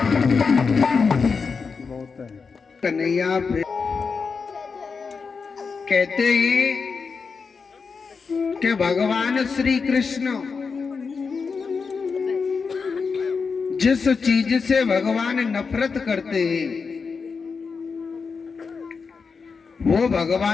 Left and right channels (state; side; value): quieter; right; 5.1 dB